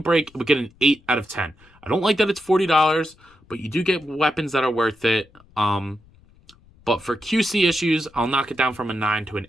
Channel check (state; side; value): noise; left; rumble, 29 dB below the sound